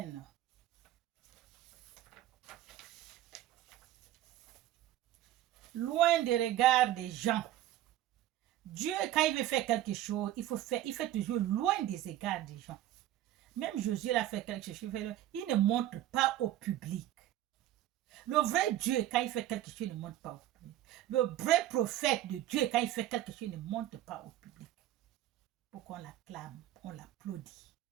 Loin des regards des gens. Dieu, quand il veut faire quelque chose, il fait toujours loin des regards des gens. Même Jésus, il a fait quelque chose, il ne montre pas au public. Le vrai Dieu, quand il fait quelque chose, il ne montre pas au public. Le vrai prophète de Dieu, quand il fait quelque chose, il ne montre pas au public. Pour qu'on l'acclame, on l'applaudit.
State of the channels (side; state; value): left; quieter; 13.5 dB